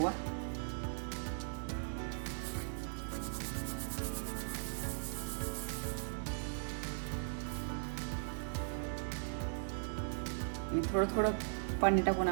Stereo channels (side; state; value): left; silent; 52 dB below the other